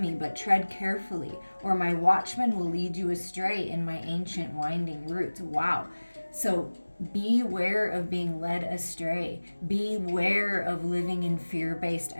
but tread carefully, or my watchman will lead you astray in my ancient winding roots. Wow. So beware of being led astray. Beware of living in fear-based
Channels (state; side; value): inverted; both; correlation -1.00